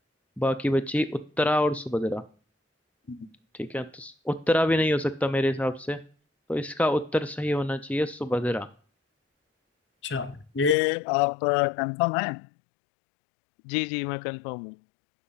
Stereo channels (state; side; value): drops out; right; at 10.8 s